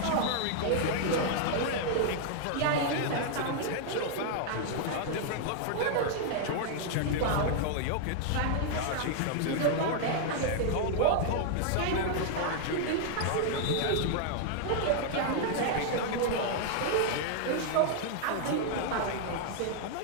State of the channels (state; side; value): different; both; correlation -0.01